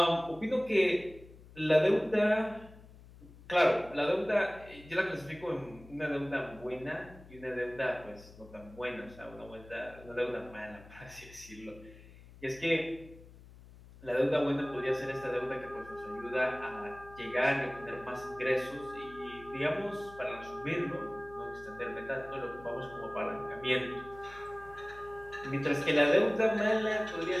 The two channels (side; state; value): left; noise; hum, 20 dB below the sound